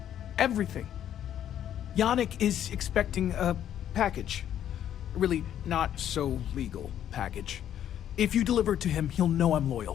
Everything. Yannick is expecting a package. A really not so legal package. If you deliver it to him, he'll know I'm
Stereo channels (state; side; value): quieter; right; 10.5 dB